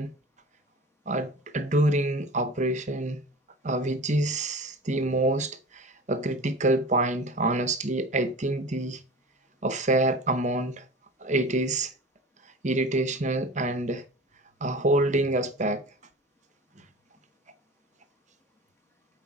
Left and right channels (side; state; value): both; normal; correlation 0.36